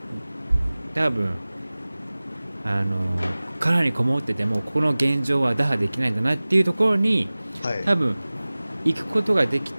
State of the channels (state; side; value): inverted; both; correlation -0.99